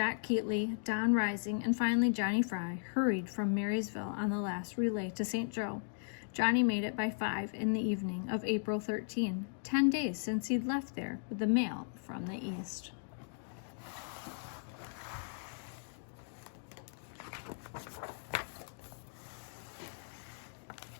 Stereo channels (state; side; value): silent; right; digital silence